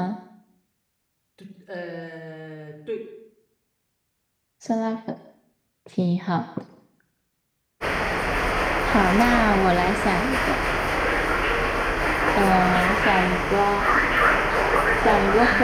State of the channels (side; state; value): both; identical; correlation 1.00